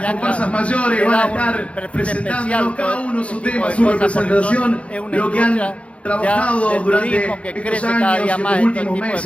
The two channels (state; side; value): late; right; 0.062 ms